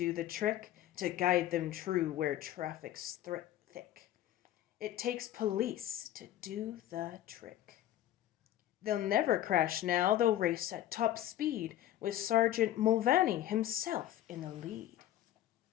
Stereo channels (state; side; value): quieter; right; 12.8 dB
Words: the trick, to guide them true where traffic's thick. It takes police to do the trick. They'll never crash now, they'll race at top speed with Sergeant Mulvaney himself in the lead.